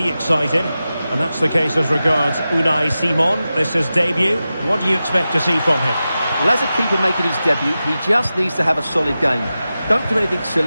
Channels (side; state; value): both; inverted; correlation -0.93